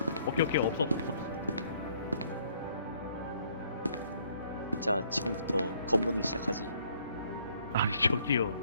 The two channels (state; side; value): inverted; both; correlation -0.65